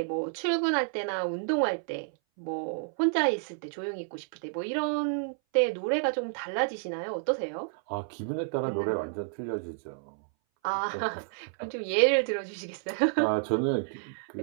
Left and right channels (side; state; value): left; silent; 58 dB below the other